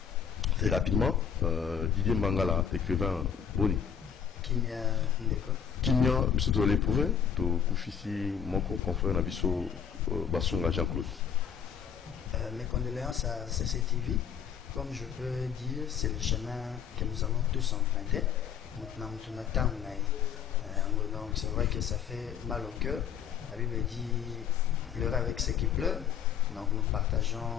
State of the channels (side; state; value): right; quieter; 8.0 dB